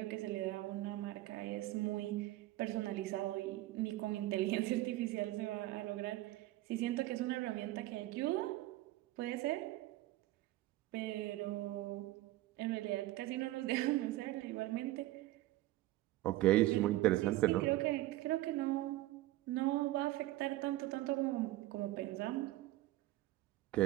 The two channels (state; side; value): quieter; left; 16.7 dB